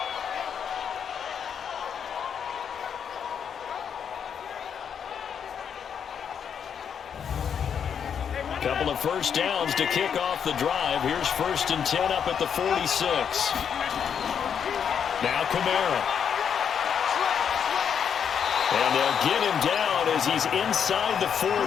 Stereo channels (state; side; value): quieter; right; 7.7 dB